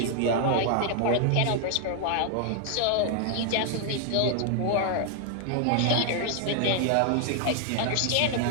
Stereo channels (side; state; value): both; different; correlation 0.00